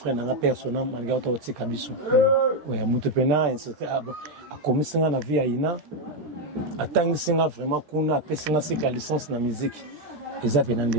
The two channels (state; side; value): late; left; 13 ms